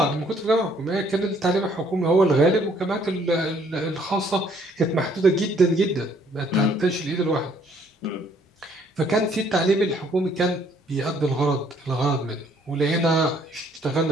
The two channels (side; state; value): both; normal; correlation 0.64